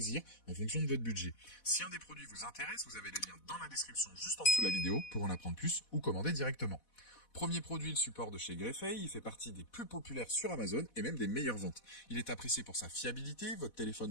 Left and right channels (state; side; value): late; right; 4.1 ms